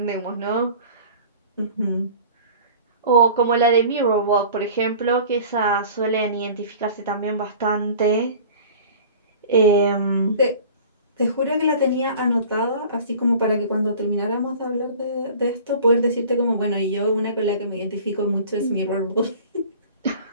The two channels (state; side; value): inverted; both; correlation -0.43